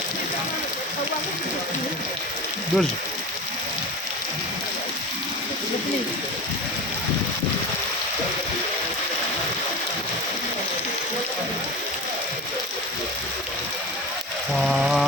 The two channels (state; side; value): normal; both; correlation 0.29